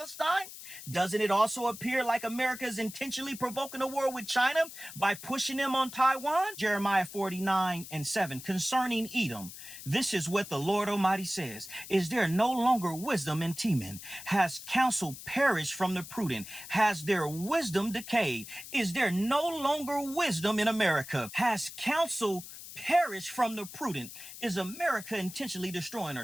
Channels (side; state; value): left; noise; hiss, 13 dB below the sound